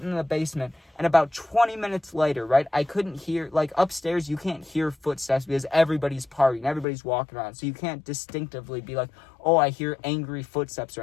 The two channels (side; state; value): right; drops out; at 6.9 s